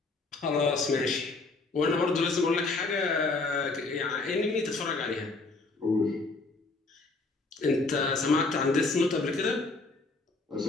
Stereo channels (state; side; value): quieter; right; 3.6 dB